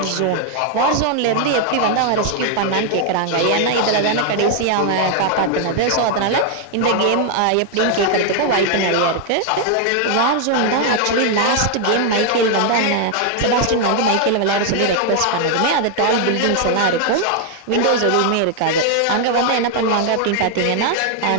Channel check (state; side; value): different; both; correlation 0.00